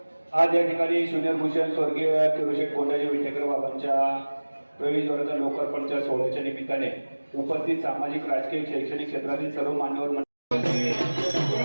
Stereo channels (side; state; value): both; inverted; correlation -1.00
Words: आज या ठिकाणी ज्युनियर भूषण स्वर्गीय किरोशेठ कोंडाजी विटेकर बाबांच्या प्रवेशद्वाराच्या लोकार्पणच्या सोहळ्याच्या निमित्ताने उपस्थित सामाजिक, राजकीय, शैक्षणिक क्षेत्रातील सर्व मान्यवर